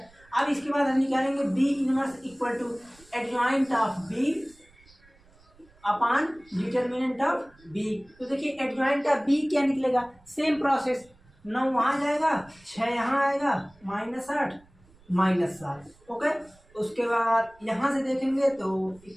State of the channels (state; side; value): noise; right; rumble, 29 dB below the sound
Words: अब इसके बाद हम निकालेंगे B inverse equal to adjoint of B upon determinant of B. तो देखिए एडजॉइंट ऑफ बी क्या निकलेगा, सेम प्रोसेस, 9 वहाँ जाएगा, 6 यहाँ आएगा, -8 -7। ओके, उसके बाद यहाँ से देखेंगे तो